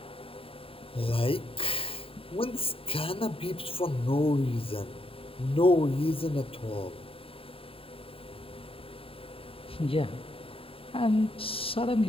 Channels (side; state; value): right; late; 0.27 ms